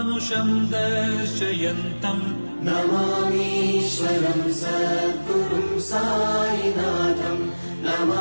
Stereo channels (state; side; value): inverted; both; correlation -1.00